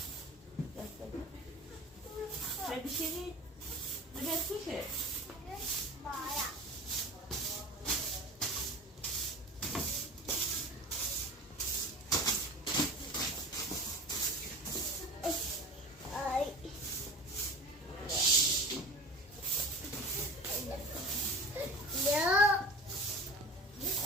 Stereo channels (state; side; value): normal; both; correlation 0.36